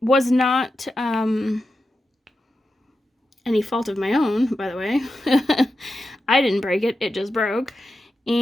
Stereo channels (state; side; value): normal; both; correlation 0.90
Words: was not any fault of my own, by the way. I didn't break it. It just broke.